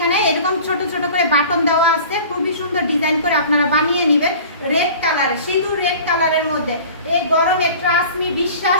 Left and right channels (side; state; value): both; inverted; correlation -0.42